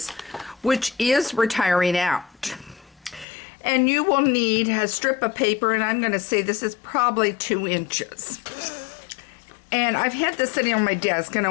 which is retiring out. And you will need a strip of paper, and I'm going to say this is probably 2 inches. And I've had this sitting on my desk, and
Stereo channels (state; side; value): drops out; right; at 3.2 s